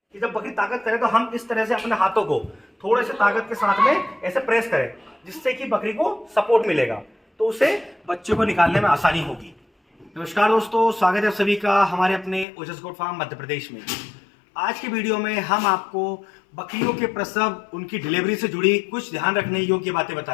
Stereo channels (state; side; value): drops out; right; at 12.5 s